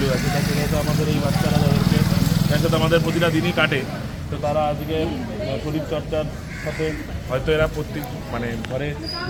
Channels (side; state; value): both; identical; correlation 1.00